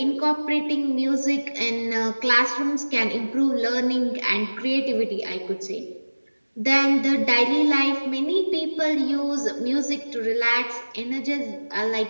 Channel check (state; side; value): inverted; both; correlation -1.00